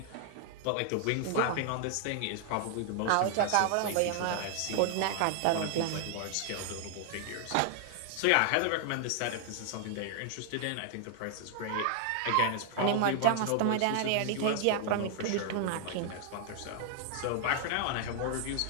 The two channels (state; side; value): different; both; correlation 0.00